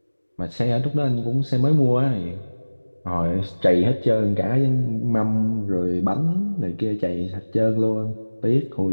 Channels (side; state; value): both; inverted; correlation -1.00